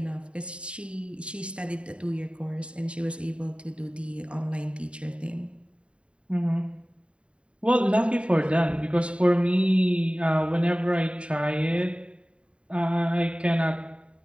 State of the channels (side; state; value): left; late; 0.057 ms